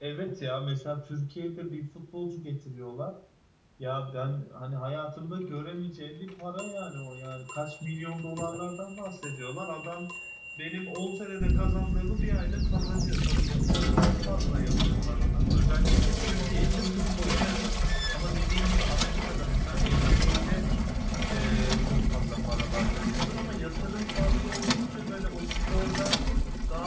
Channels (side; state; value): both; identical; correlation 1.00